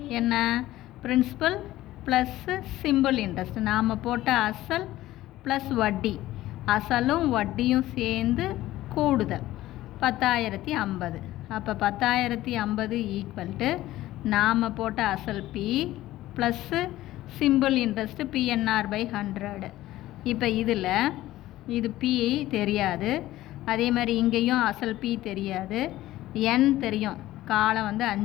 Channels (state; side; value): quieter; right; 15.6 dB